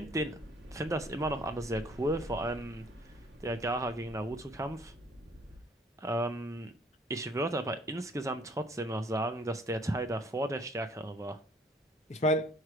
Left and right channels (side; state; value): both; normal; correlation 0.58